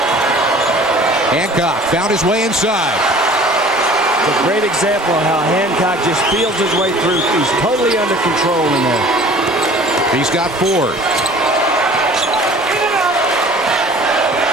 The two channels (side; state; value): both; normal; correlation 0.47